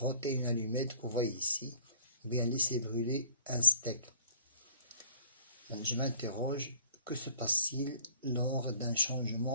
une allumette que vous voyez ici, ou bien laissez brûler un steak. Je m'interroge, que se passe-t-il lors d'un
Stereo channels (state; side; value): inverted; both; correlation -0.53